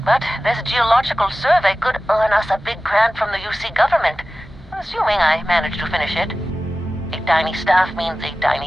But this geological survey could earn us a big grant from the UC government, assuming I manage to finish it. A tiny staff means a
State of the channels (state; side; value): normal; both; correlation 0.96